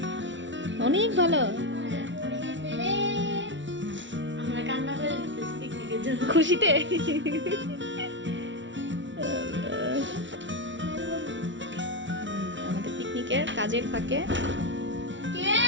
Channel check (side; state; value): left; late; 0.55 ms